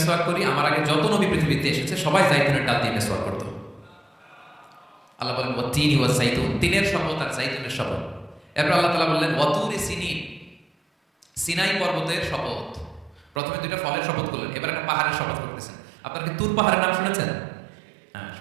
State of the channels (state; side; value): drops out; left; at 13.4 s